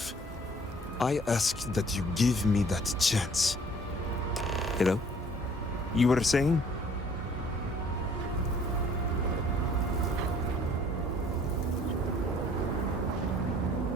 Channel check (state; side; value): normal; both; correlation 0.56